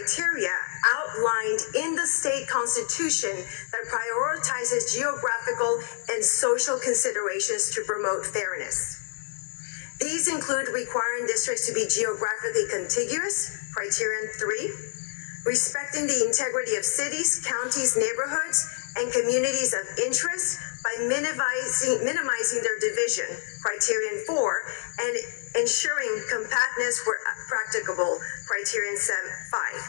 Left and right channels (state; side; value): silent; right; 60 dB below the other